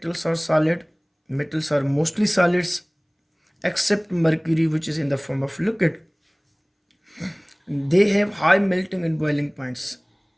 are solid. Metals are mostly solids except mercury, which is in the form of liquid. They have high melting and boiling points.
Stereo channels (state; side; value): identical; both; correlation 1.00